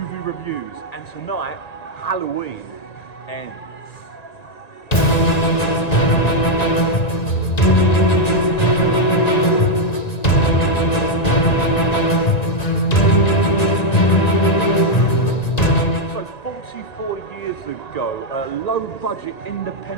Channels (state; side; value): late; right; 1.9 ms